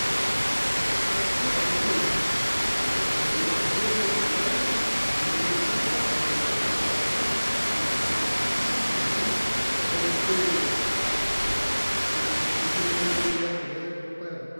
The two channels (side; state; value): both; inverted; correlation -1.00